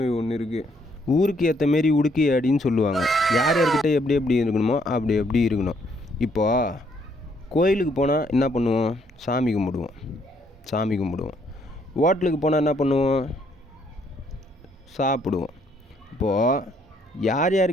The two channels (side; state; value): both; normal; correlation 0.69